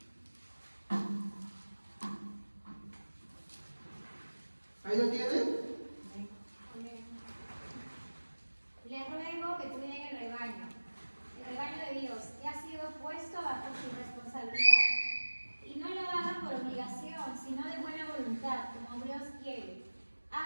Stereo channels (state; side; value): inverted; both; correlation -1.00